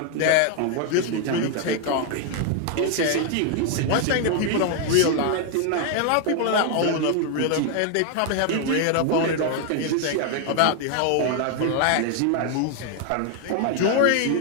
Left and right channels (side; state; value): both; different; correlation 0.00